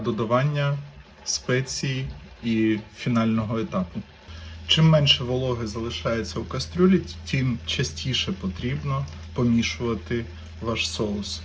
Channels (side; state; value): both; identical; correlation 1.00